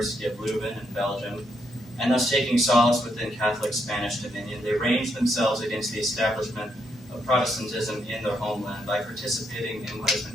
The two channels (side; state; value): both; normal; correlation 0.78